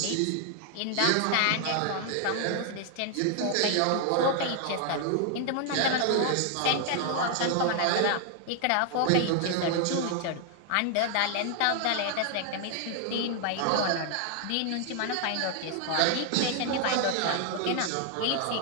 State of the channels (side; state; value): both; different; correlation 0.00